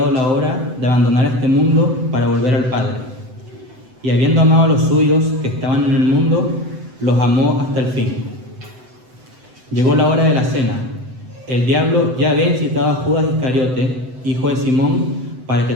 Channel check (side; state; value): left; late; 7.9 ms